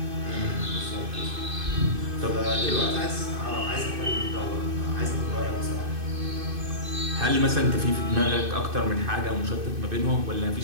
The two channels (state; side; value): late; left; 2.6 ms